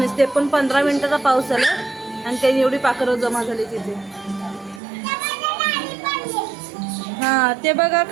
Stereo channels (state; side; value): drops out; left; at 4.8 s